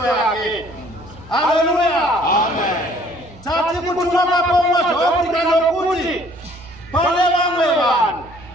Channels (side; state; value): right; noise; hum, 21 dB below the sound